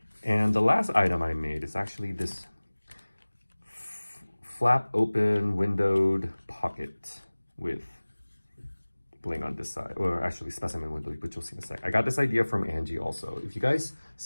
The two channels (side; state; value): both; inverted; correlation -1.00